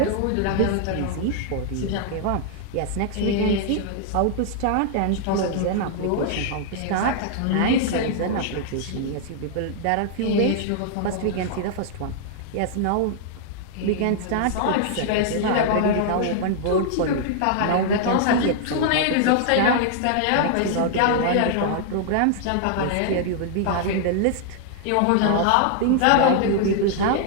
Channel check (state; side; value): different; both; correlation -0.01